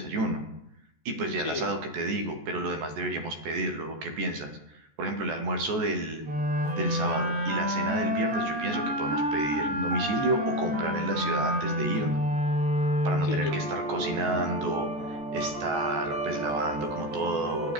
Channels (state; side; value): late; left; 14 ms